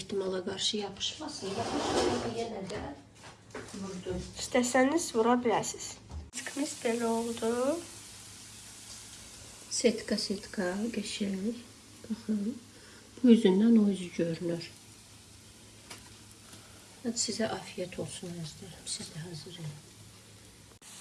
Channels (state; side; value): identical; both; correlation 1.00